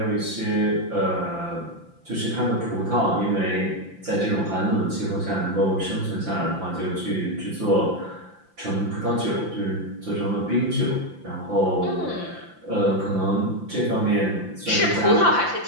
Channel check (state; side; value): late; left; 5.8 ms